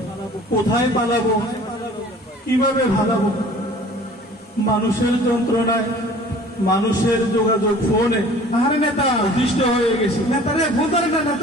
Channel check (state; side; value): normal; both; correlation 0.48